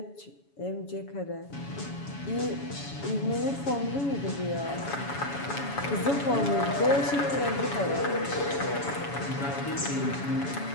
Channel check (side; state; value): right; late; 7.1 ms